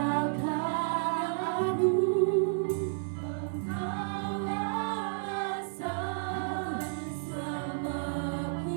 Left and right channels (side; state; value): left; silent; 57 dB below the other